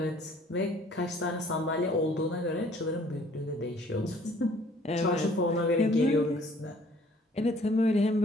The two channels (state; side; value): normal; both; correlation 0.57